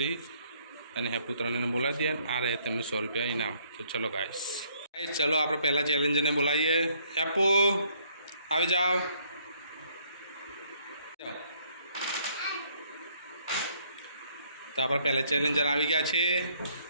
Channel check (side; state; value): both; inverted; correlation -0.66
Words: અને હેપુ ત્રણેને બોલાવી દઈએ, આ રહે તેમનું 100 રૂપિયા ઇનામ। તો ચલો ગાઈસ ચલો આપણે પહેલા ચેલેન્જરને બોલાવીએ। હેપુ આવી જાઓ। તો આપણા પહેલા ચેલેન્જર આવી ગયા છે